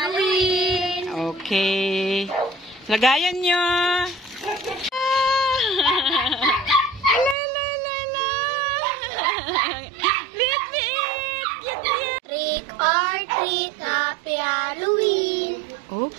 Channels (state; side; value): drops out; left; at 7.4 s